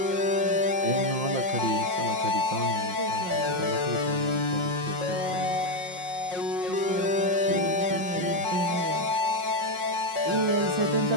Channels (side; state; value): left; late; 5.5 ms